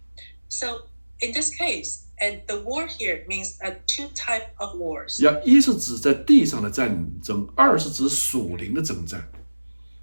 So in this case, and the war here means two type of wars. 一是指在地上的战争，2是指属灵的征战。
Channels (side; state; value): both; inverted; correlation -1.00